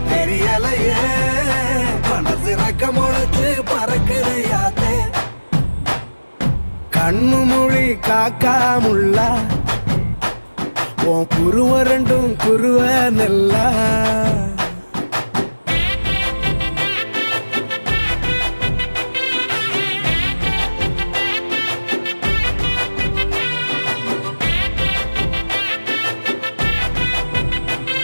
தெரியலையே மனசு ரக்க முளைச்சு பறக்குறையாத்தே கண்ணு மொழி காக்காமுள்ள உன் குருவ ரெண்டும் குருவ நெல்லா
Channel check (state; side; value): inverted; both; correlation -1.00